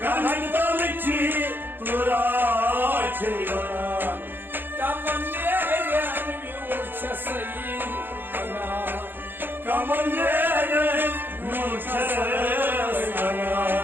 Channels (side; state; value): left; late; 0.096 ms